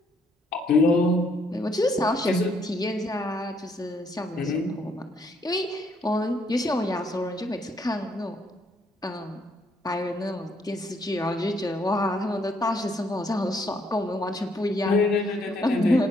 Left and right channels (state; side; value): normal; both; correlation 0.70